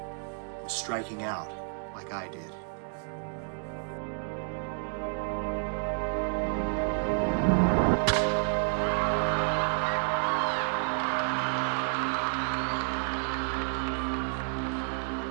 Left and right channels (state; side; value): silent; left; 58 dB below the other